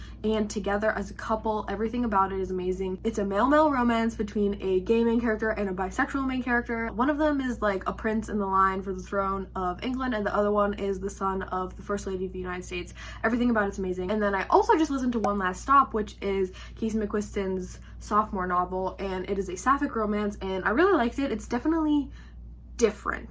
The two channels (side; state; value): both; identical; correlation 1.00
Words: and together as a couple. Everything about it is amazing. It's a male-male romance between a gay main character and a bisexual main character. One of them is like a prince in the line for the throne of England, and the other one is the son of the First Lady of the United States. Everything about it's amazing. And then I also just listened to One Last Stop, which is Casey McQuiston's sophomore novel, and it is a sapphic romance, and I really liked it. It's definitely